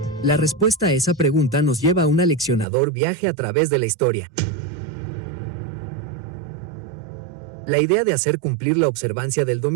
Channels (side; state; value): left; drops out; at 2.7 s